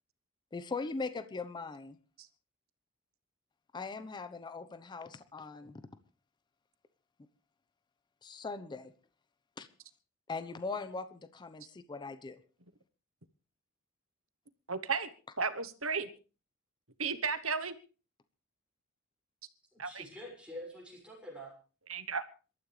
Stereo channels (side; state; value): both; normal; correlation -0.04